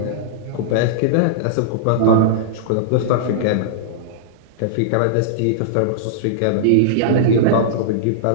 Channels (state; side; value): different; both; correlation -0.02